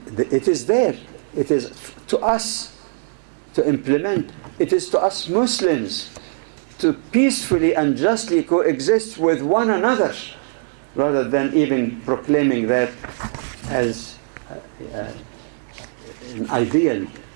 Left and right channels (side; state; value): left; silent; digital silence